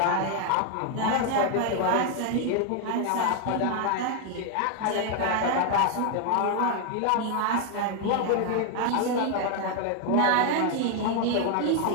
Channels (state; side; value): different; both; correlation 0.01